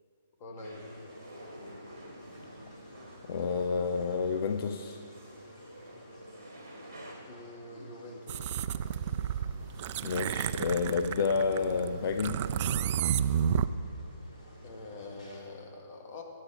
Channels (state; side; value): inverted; both; correlation -0.56